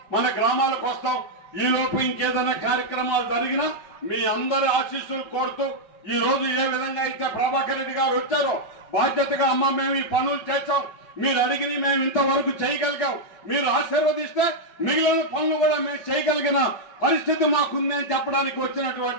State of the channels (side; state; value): right; late; 5.3 ms